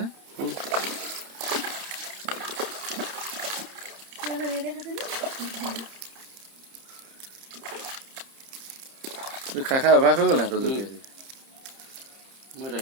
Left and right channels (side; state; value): left; late; 30 ms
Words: খাই খাই অভ্যাস হৈ গ'ল সিহঁতৰ জলকীয়া মই